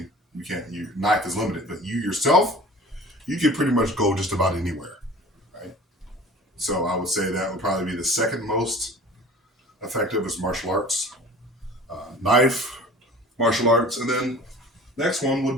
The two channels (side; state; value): both; normal; correlation 0.43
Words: you can't. Your knife is limited, but you yourself, you can pretty much go just about anywhere, right? So I would say that would probably be the second most effective is martial arts, knife, martial arts, and then next one would